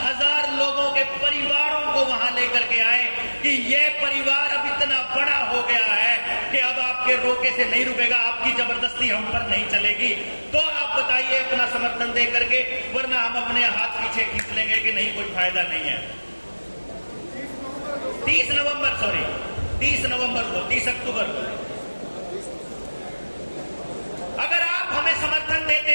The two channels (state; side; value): inverted; both; correlation -1.00